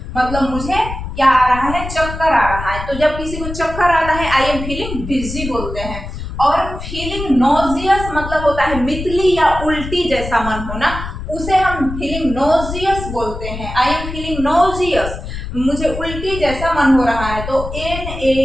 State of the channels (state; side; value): noise; left; rumble, 8 dB below the sound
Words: मतलब मुझे क्या आ रहा है, चक्कर आ रहा है। तो जब किसी को चक्कर आता है, आई एम फीलिंग डिजी बोलते हैं। और फीलिंग नोजियस मतलब होता है मितली या उल्टी जैसा मन होना, उसे हम फीलिंग नोजियस बोलते हैं, आई एम फीलिंग नोजियस, मुझे उल्टी जैसा मन हो रहा है। तो